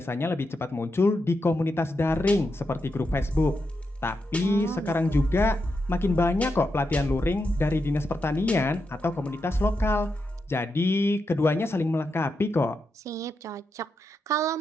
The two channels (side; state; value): both; normal; correlation 0.85